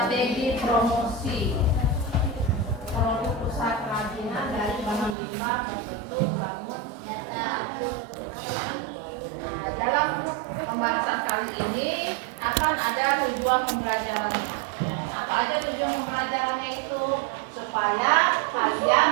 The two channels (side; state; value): left; drops out; at 5.2 s